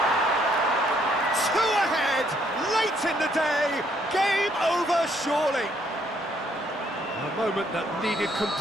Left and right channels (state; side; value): normal; both; correlation 0.69